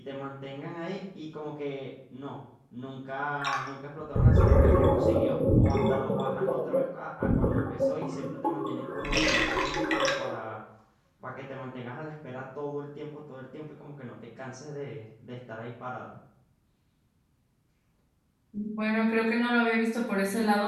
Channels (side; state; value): both; identical; correlation 1.00